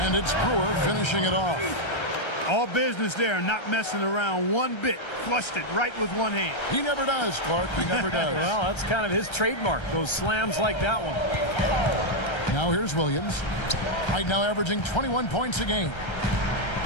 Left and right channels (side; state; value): right; late; 1.3 ms